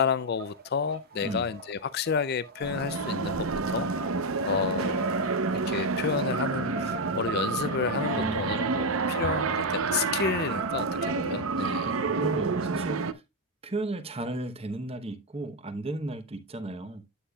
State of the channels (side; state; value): both; normal; correlation 0.03